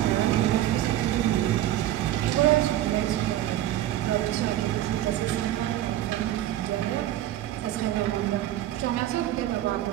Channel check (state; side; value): quieter; left; 13.3 dB